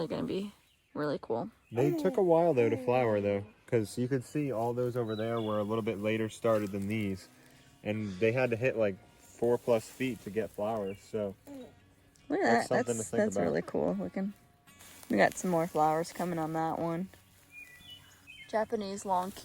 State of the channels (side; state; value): both; identical; correlation 1.00